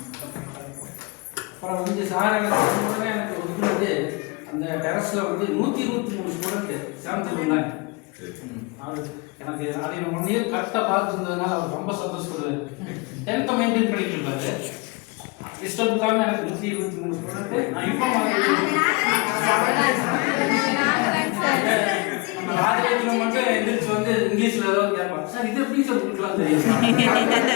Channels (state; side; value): quieter; right; 27.9 dB